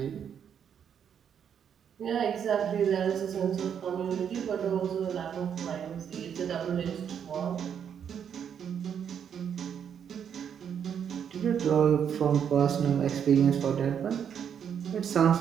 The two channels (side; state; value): left; quieter; 8.2 dB